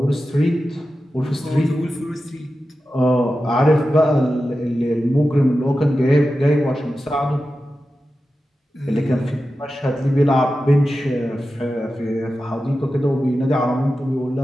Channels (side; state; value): both; normal; correlation 0.92